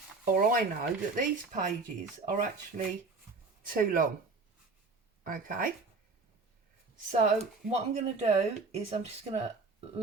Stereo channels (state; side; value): quieter; left; 4.0 dB